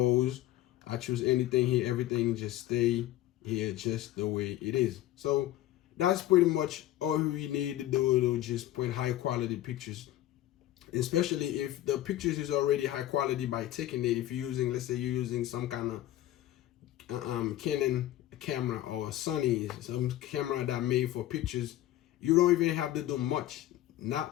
I choose anything here, everything just stay here just the way it is. So that's pretty much all we need to do to just print high quality pictures, especially if the pictures is already high quality by taking it. If you're using, let's say you're using some kind of Canon camera or Sony, some camera that made for pictures, you don't even have to do much.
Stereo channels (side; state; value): right; quieter; 14.2 dB